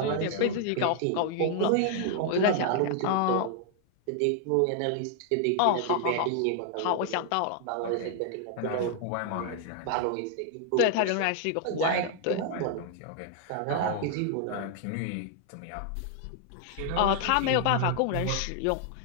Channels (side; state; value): both; different; correlation 0.00